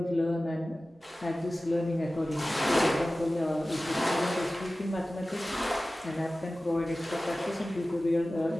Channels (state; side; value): normal; both; correlation 0.96